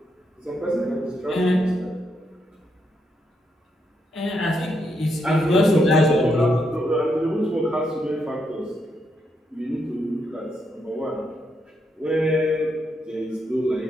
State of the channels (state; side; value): normal; both; correlation 0.79